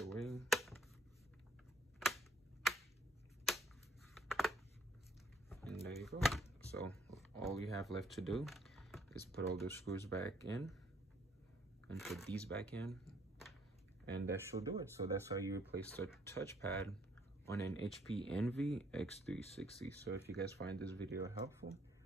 way. And there you go. So all you have left to do is put all the screws back in and put these back in, and that should do it. So that's how you replace the touchpad on an HP Envy x360. So if you guys find this video helpful,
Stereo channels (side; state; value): both; normal; correlation 0.64